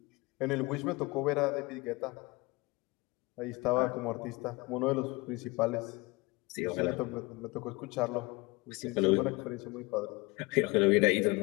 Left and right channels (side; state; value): right; quieter; 24.4 dB